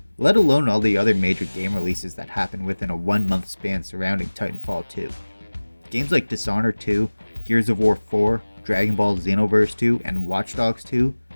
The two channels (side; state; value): both; inverted; correlation -1.00